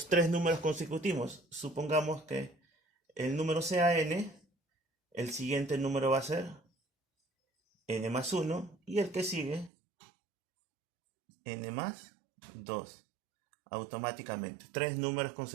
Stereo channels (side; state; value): left; drops out; at 9.7 s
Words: 3 números consecutivos, supongamos que el número sea n, el siguiente número va a ser n más 1 y el que sigue n más 2. Automáticamente, 3 números